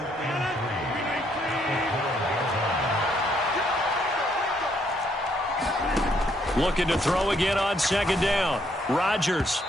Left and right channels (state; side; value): normal; both; correlation 0.71